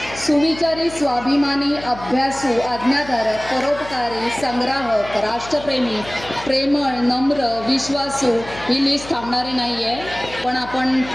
सुविचारी, स्वाभिमानी, अभ्यासू, आज्ञाधारक, परोपकारी, संग्राहक, राष्ट्रप्रेमी, प्रेमळ, नम्र, विश्वासू ही लिस्ट थांबणारी नाही आहे। पण आपण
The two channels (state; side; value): noise; left; hum, 16 dB below the sound